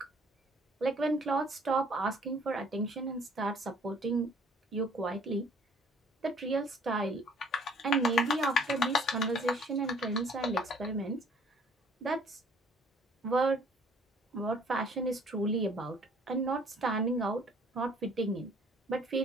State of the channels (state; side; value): normal; both; correlation 0.57